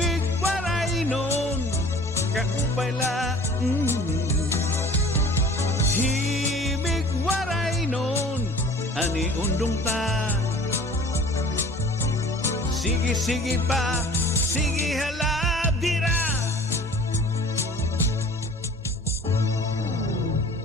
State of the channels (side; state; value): both; normal; correlation 0.47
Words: waray nun kaupay la. Himig waray nun ani undong ta. Sige, sige pa,